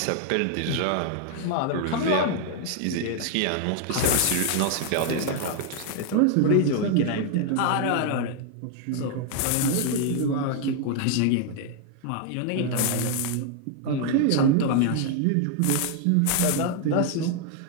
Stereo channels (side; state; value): both; different; correlation 0.00